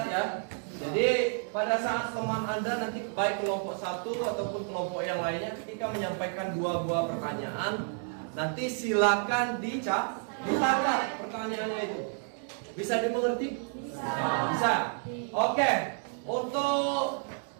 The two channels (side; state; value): left; silent; 56 dB below the other